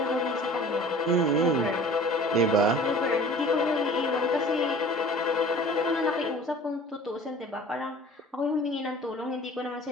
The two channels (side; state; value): both; normal; correlation 0.45